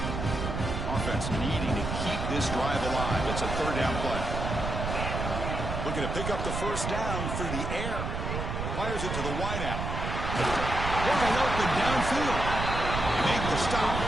Offense needing to keep this drive alive. It's a third down play. Looking to pick up the first down through the air. Fires it to the wideout. Wide open downfield. They make the stop,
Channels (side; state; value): right; noise; rumble, 3 dB below the sound